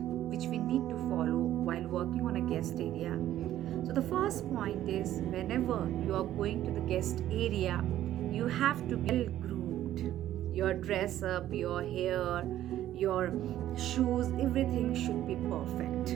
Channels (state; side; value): quieter; left; 12.7 dB